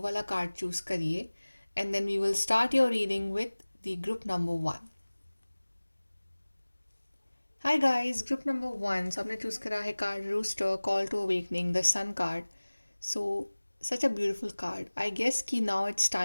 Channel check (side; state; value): both; inverted; correlation -1.00